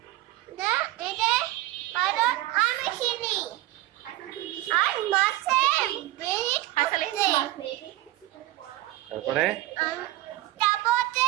না এটা বাদত আমি চিনি আর মাছে বেরি খাচ্ছে তারপরে তারপরে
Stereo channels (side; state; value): left; quieter; 16.9 dB